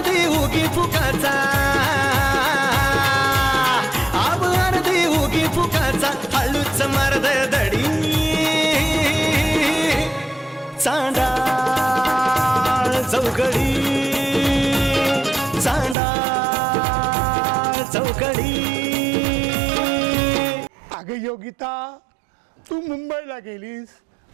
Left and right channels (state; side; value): drops out; left; at 16.0 s